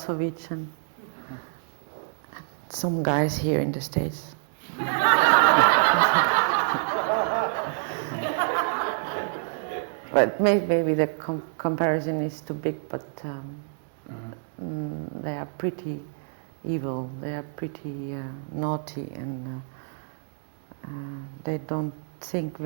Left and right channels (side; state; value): left; silent; digital silence